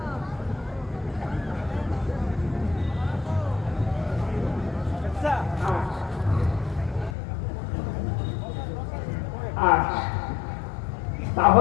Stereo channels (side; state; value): right; drops out; at 7.1 s